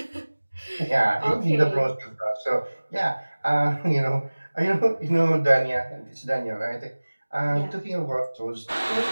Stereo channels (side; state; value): both; inverted; correlation -1.00